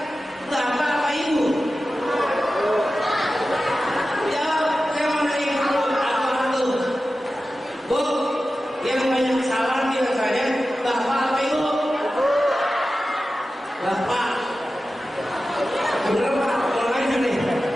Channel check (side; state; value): both; normal; correlation 0.94